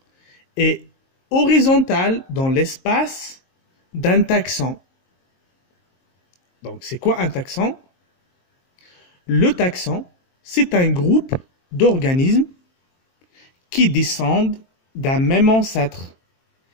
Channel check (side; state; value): right; late; 23 ms